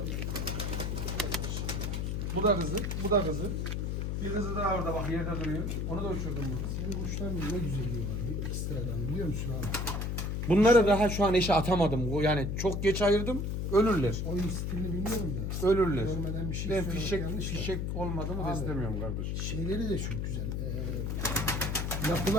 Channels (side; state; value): left; noise; hum, 1 dB below the sound